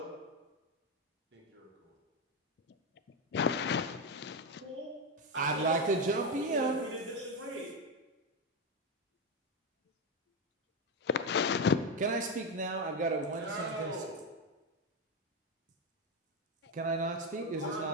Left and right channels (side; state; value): both; normal; correlation 0.10